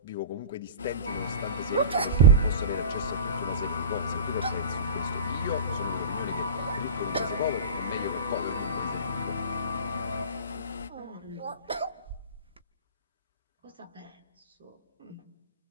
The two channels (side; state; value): both; inverted; correlation -0.31